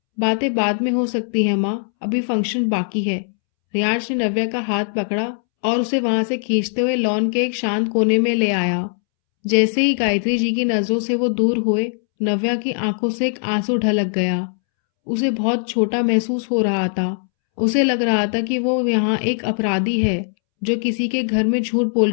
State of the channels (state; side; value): silent; right; 66 dB below the other